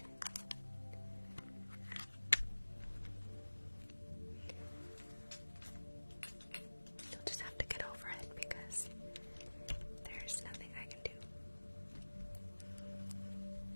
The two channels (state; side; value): inverted; both; correlation -1.00